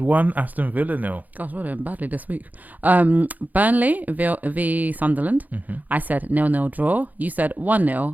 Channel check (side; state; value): left; late; 0.081 ms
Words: 1, Aston Villa 0. Gosh, we're doing badly this week. Burnley v Sunderland. Mm-hmm. I said 0-0 draw. You said